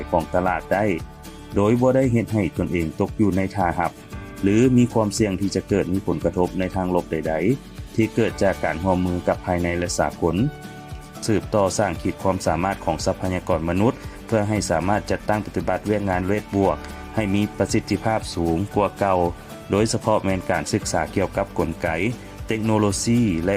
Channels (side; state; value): both; identical; correlation 1.00